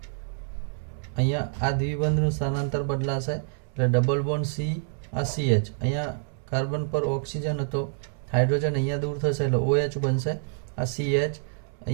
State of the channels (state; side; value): silent; left; 60 dB below the other